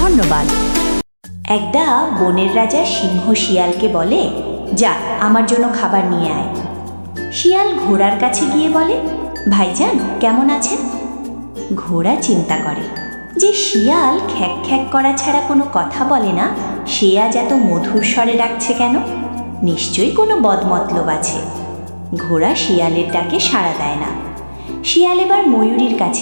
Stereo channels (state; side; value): inverted; both; correlation -1.00